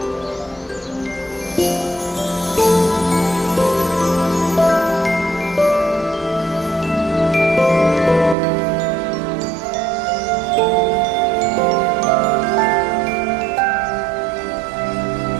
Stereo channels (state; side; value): drops out; left; at 8.3 s